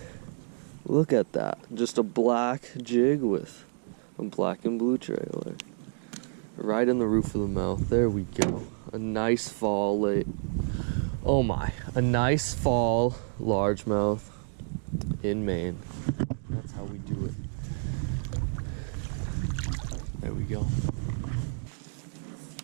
Look at that. Just a black jig with a black and blue trailer. Right in the roof of the mouth. There we go. A nice fall late. Oh my. A nice fall largemouth in Maine. That's how we do it. There we go.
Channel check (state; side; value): silent; left; 58 dB below the other